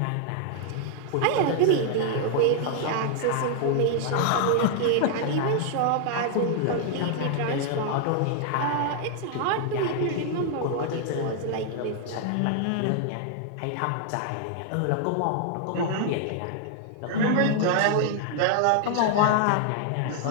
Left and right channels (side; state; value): both; different; correlation 0.00